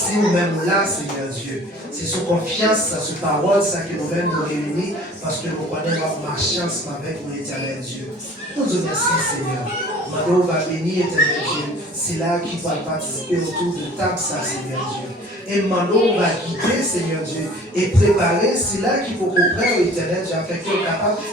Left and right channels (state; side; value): normal; both; correlation 0.48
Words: nous-mêmes là, Seigneur Dieu. C'est sous confiance, sous parole, ça que nous-mêmes nous réunissons, parce que nous connaissons notre marchance avec nous, éternel Dieu. Nous te remercions, Seigneur. Maintenant, on va bénir, éternel Dieu. C'est là qu'il va participer autour de table, ça, Seigneur Dieu. Et maintenant, on va guider, Seigneur Dieu, et préparer, c'est là qu'il faut comprendre, éternel Dieu, afin qu'on soit capable